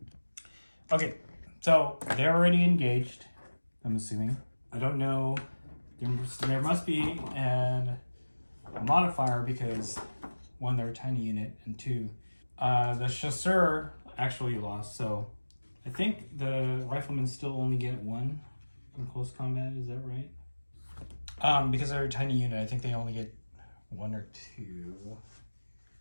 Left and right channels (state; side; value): inverted; both; correlation -1.00